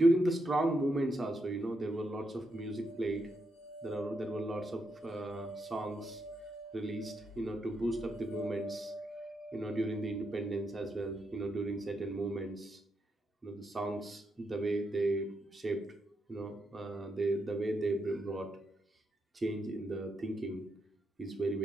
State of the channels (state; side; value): normal; both; correlation 0.82